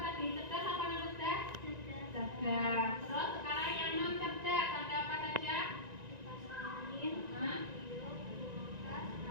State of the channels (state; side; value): late; left; 1.9 ms